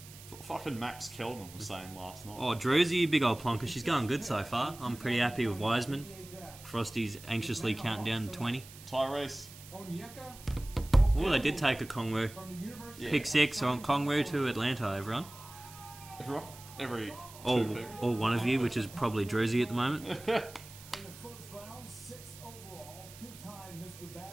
That's what fucking Max Kelman was saying last night. Oh, Druzy, big old plonker. She's going good so far. I'm pretty happy with Wiseman. Frosty's anxiously counting down to 20. Tyrese. Oh, they did take a Kongwu. Yeah. Pick 6 on Kongwu to Atlanta, everyone. Everyone? Every All two pick. one of you, which is probably Druzy at the moment.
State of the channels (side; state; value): right; noise; hiss, 18 dB below the sound